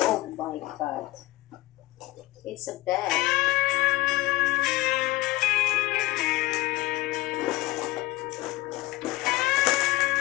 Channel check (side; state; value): right; quieter; 18.5 dB